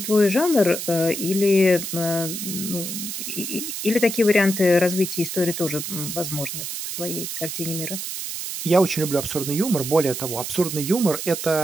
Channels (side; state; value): right; noise; hiss, 5 dB below the sound